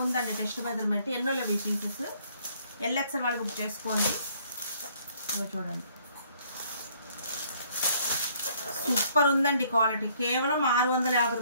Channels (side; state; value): both; inverted; correlation -0.63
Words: ఉందండి టెస్ట్ మెజర్మెంట్. ఎన్నో లేవు ఈ పీసెస్. ఎల్ఎక్స్ఎల్ వాళ్ళు బుక్ చేసుకోండి. చూడండి సూపర్ ఉందండి క్వాలిటీ. కేవలం 650